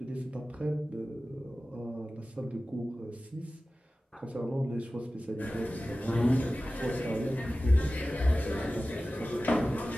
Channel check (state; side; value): normal; both; correlation 0.96